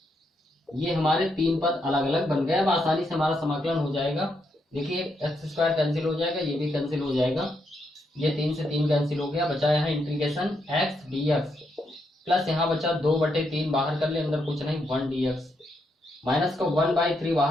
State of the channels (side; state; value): both; normal; correlation 0.79